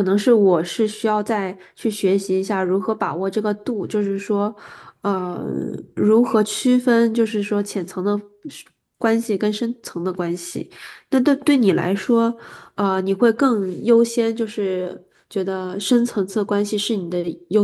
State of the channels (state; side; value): identical; both; correlation 1.00